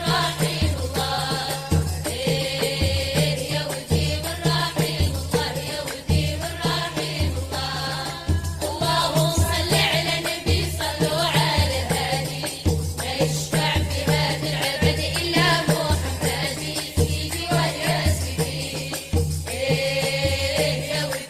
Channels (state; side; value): identical; both; correlation 1.00